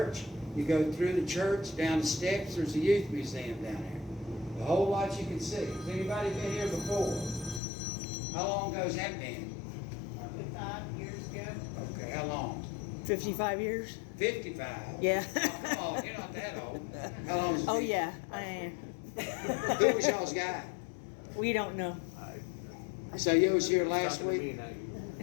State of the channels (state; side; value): drops out; right; at 7.6 s